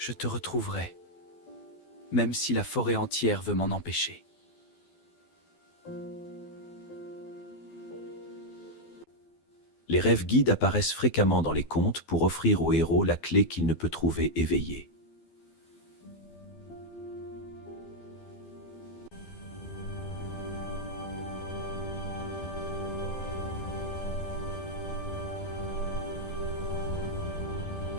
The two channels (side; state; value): right; late; 12 ms